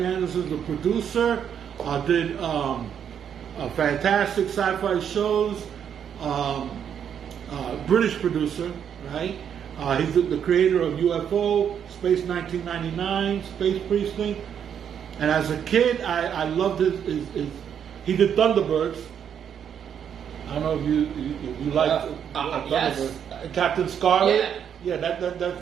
Anderson is the producer, did fantastic sci-fi shows, British producer, right? He's the creator of UFO, Space 1999, Space Precinct. And as a kid, I loved his he did Thunderbirds. I don't know if you like Thunderbirds. Yes. Captain Scarlet. Yeah,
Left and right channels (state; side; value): quieter; left; 8.4 dB